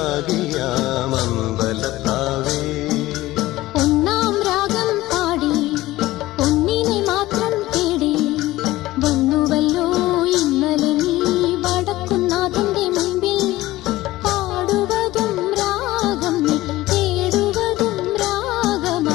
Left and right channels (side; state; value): right; quieter; 17.2 dB